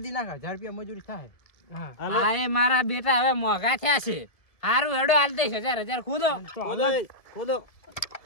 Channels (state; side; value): late; right; 1.7 ms